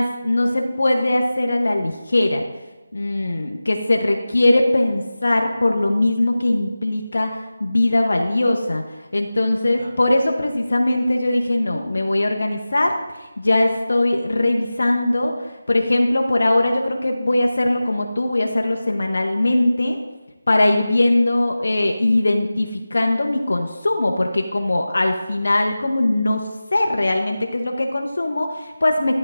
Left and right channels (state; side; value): inverted; both; correlation -0.96